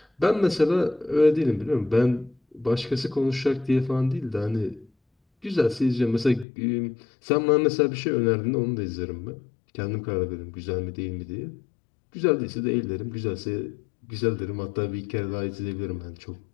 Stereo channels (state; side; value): drops out; right; at 6.5 s